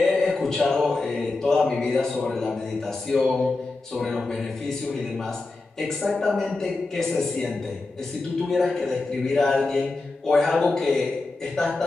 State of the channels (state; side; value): quieter; right; 3.4 dB